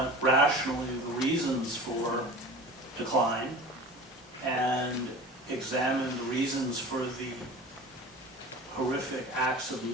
rationally the reasons for decline and examine the reasons for the horrific acts of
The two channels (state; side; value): normal; both; correlation 0.36